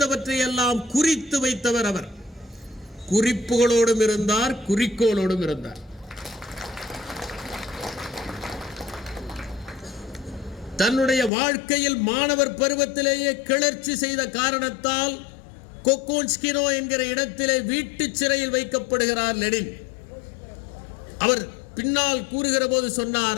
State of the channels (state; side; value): drops out; right; at 11.3 s